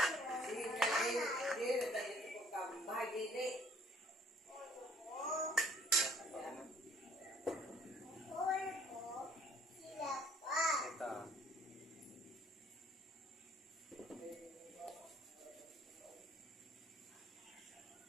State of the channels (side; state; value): both; normal; correlation 0.59